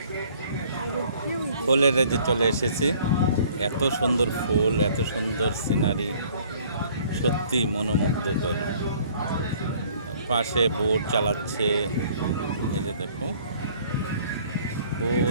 ফুলের রাজ্যে চলে এসেছি। এত সুন্দর ফুল, এত সুন্দর সিনারি, সত্যি মনোমুগ্ধকর। পাশে বোট চালাচ্ছে, এই যে দেখো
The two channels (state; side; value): inverted; both; correlation -0.56